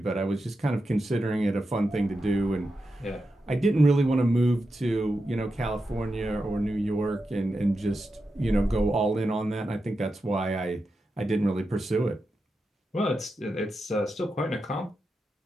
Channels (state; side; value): normal; both; correlation 0.89